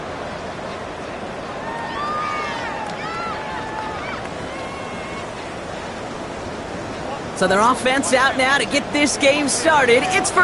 So their offense out now to get this game started. It's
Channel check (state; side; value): identical; both; correlation 1.00